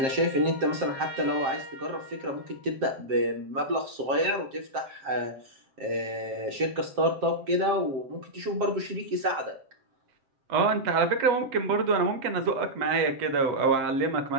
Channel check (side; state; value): left; late; 7.6 ms